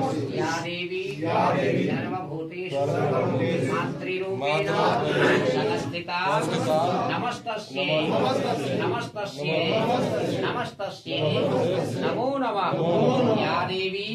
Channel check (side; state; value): both; identical; correlation 1.00